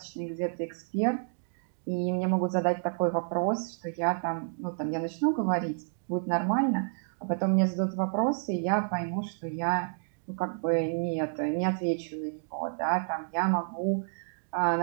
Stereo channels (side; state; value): left; silent; digital silence